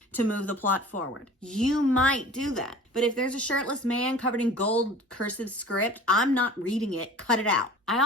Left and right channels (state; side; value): normal; both; correlation 0.43